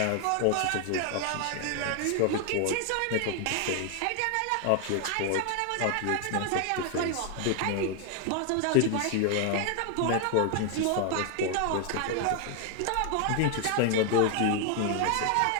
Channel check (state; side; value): different; both; correlation 0.00